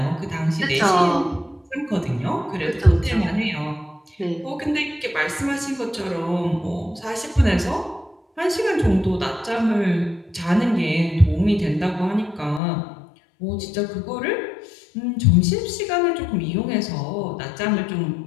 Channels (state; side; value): drops out; right; at 12.6 s